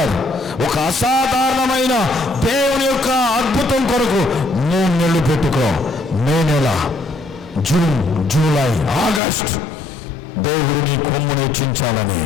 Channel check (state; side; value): drops out; right; at 9.2 s